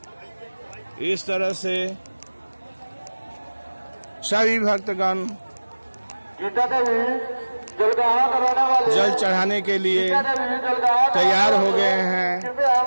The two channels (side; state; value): both; inverted; correlation -1.00